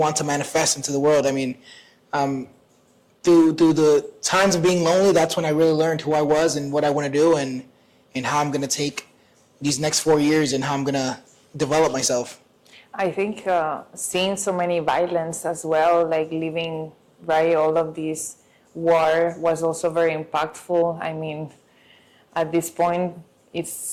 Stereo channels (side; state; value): both; identical; correlation 1.00